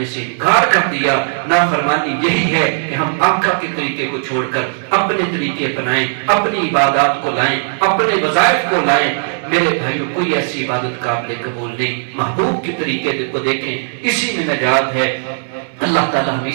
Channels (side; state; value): left; silent; digital silence